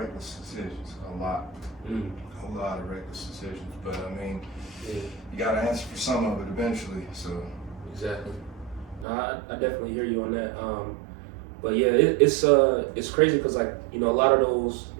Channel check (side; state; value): left; drops out; at 9.1 s